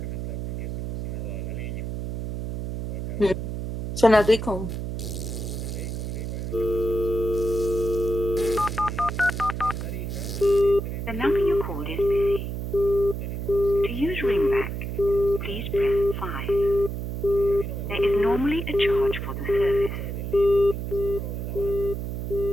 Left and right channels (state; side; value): noise; right; hum, 4 dB below the sound